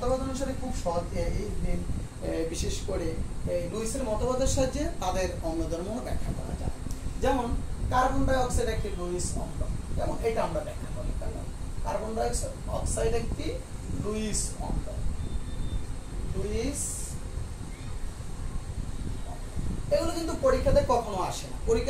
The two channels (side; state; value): both; identical; correlation 1.00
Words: অনুসারে খুব সহজে বিশেষ করে লুইসের মতবাদের সাহায্যে তাদের অম্লধর্ম ব্যাখ্যা করা যায়। যেমন কার্বন ডাইঅক্সাইড একটি লুইস অম্ল, যেমন এটা আমরা ব্যাখ্যা করি, কেমন, কার্বন ডাইঅক্সাইড একটি লুইস অম্ল, এগুলো কিন্তু পরীক্ষাতে কখনো আসে না।